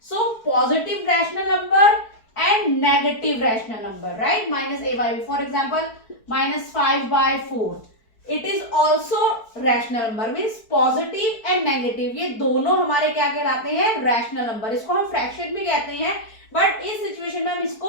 So positive rational number and negative rational number, right, -a/b, for example -5/4, it is also rational number, means positive and negative, ये दोनों हमारे क्या कहलाते हैं? Rational number. इसको हम फ्रैक्शन भी कहते हैं, बट इस सिचुएशन में हम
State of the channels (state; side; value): late; right; 4.6 ms